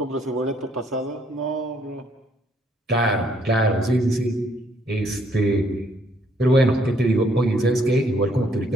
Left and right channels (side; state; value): both; normal; correlation 0.68